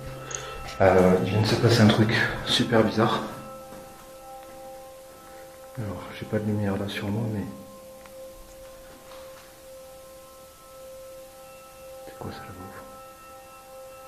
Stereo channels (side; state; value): both; identical; correlation 1.00